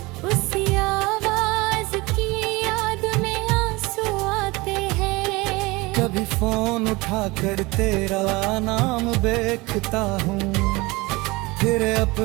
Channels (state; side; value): quieter; left; 23.2 dB